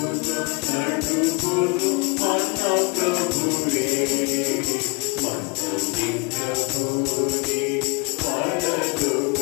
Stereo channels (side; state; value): right; quieter; 31.0 dB